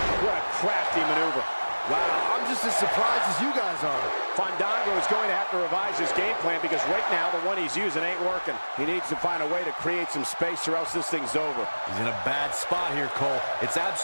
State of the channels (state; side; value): inverted; both; correlation -1.00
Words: what a crafty maneuver. Wow, I'm just as surprised as you guys are. Fandango is going to have to revise his game plan because right now the one he's using ain't working. He needs to find a way to create some space or else this thing's over. He's in a bad spot here, Cole. It's